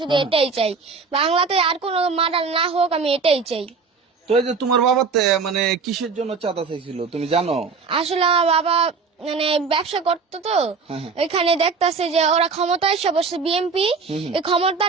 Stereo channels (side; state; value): left; quieter; 4.9 dB